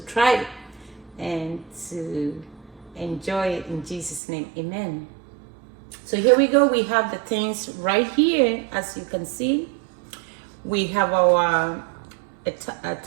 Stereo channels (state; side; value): drops out; left; at 4.2 s